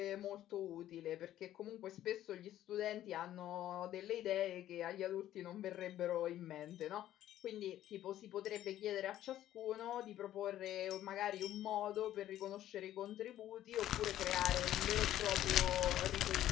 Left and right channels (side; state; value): right; quieter; 12.7 dB